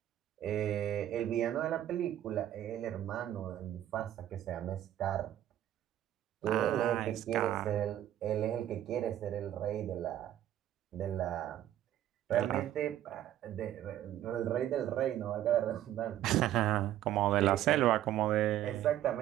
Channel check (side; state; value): left; quieter; 12.3 dB